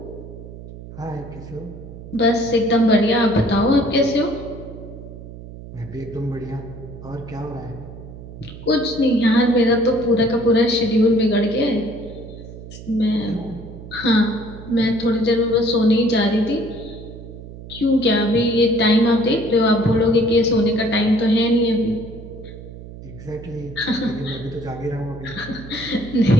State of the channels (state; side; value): noise; right; hum, 14 dB below the sound